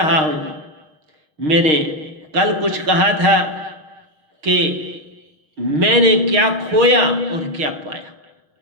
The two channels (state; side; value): late; left; 6.5 ms